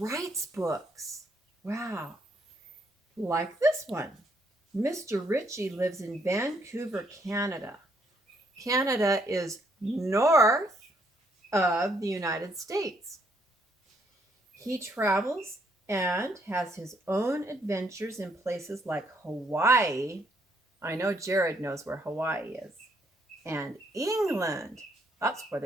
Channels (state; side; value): normal; both; correlation 0.71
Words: books. Wow. Like this one. Mr. Ritchie lives in Vancouver, Canada. Canada is north of the United States. He travels and has his own adventures in places like Hawaii. I know Jared knows where Hawaii is. And England. That's where